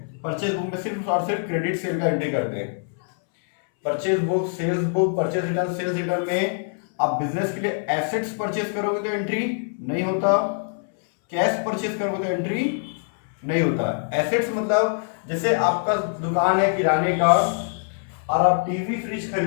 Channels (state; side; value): silent; right; 63 dB below the other